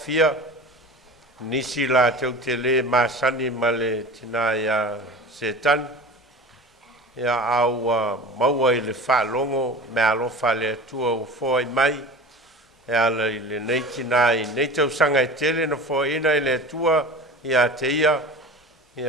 nisi la tau te le masani ma le tina ia Setani. Ia au maua i le whaalongo me alofa le atua o fōi mai. Ia le nei tina i nei tau sanga i tele na fōi ina i le atua ia te ia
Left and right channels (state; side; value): normal; both; correlation 0.36